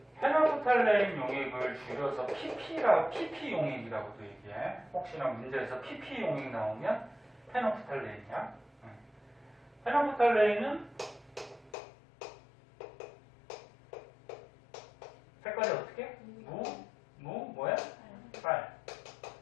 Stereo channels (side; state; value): right; drops out; at 11.8 s